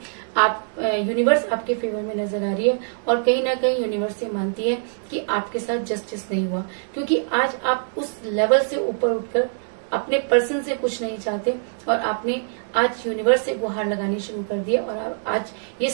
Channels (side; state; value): left; silent; digital silence